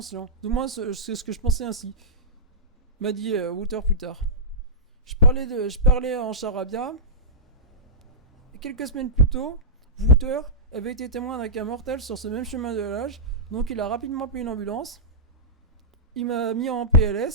Du moins, c'est ce que je pensais ainsi, m'a dit Wouter plus tard. Je parlais en charabia. Et quelques semaines plus tôt, Wouter avait été témoin d'un cas mortel sur ce même chemin de l'âge, donc il a rapidement appelé une ambulance. Il m'a mis en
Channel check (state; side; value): normal; both; correlation -0.13